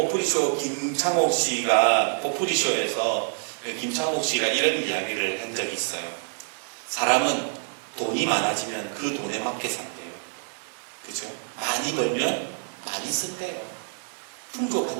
김창옥 씨가 포프리쇼에서 김창옥 씨가 이런 이야기를 한 적이 있어요. 사람은 돈이 많아지면 그 돈에 맞게 산대요. 그죠? 많이 벌면 많이 쓴대요.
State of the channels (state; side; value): silent; left; digital silence